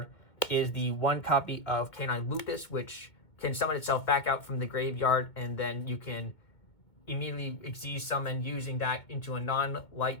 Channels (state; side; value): late; right; 2.3 ms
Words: is the 1 copy of Canine Lupus, which can summon itself back out from the graveyard, and then you can immediately Xyz summon using that into a